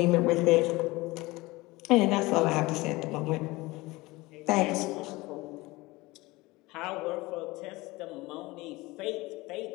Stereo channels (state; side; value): quieter; right; 21.4 dB